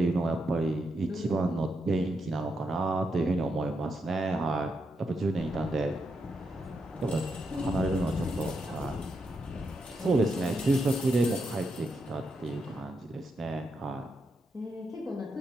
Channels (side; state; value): both; normal; correlation 0.83